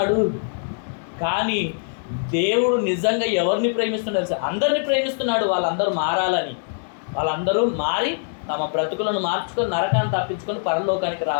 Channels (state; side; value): silent; right; 59 dB below the other